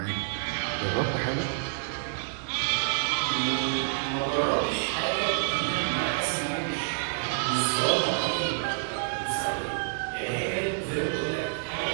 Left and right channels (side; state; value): left; silent; digital silence